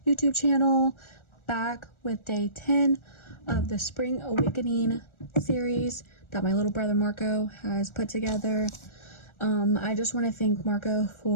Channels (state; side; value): late; right; 1.4 ms